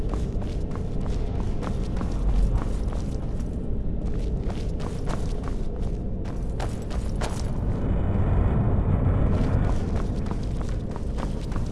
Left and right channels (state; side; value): identical; both; correlation 1.00